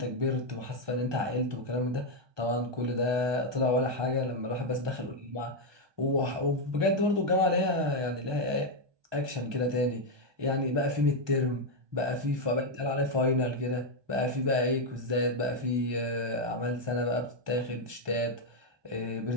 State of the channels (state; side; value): late; left; 1.2 ms